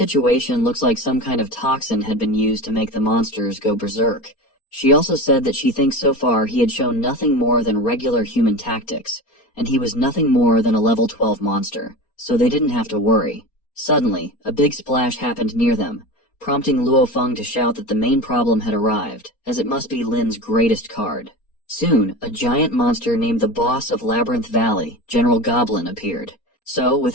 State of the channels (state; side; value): late; right; 4.3 ms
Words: looks like some kind of toxin had been used to make the monsters go berserk. She also said that she thinks so far he had shown nothing more than regular human tactics, and he was nothing more than a level 12 monster, so they didn't have to worry. Suddenly, a big splash happened near them, prompting Luofeng to shout that the main problem had arrived, as it must be Lin's greatest card. Soon, a giant monster named the boss of Labyrinth Valley, General Goblin, appeared. So,